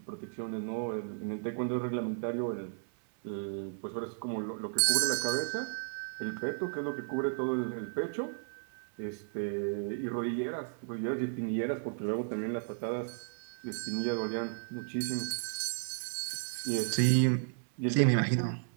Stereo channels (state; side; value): silent; left; 55 dB below the other